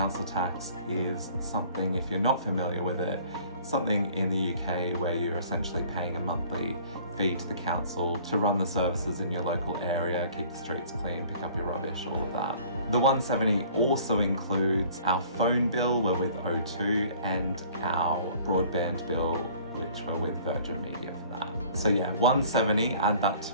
tax is something, if you're not familiar with it, something in the UK where you're essentially paying a monthly fee to the council to run the services in your local area, keep the streets clean, pick up your rubbish, all of that. The 170 also includes our phone bill, we're with O2, and our broadband bill, which we're with Virgin Media for that. So yeah, 170, add that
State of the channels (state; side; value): inverted; both; correlation -0.52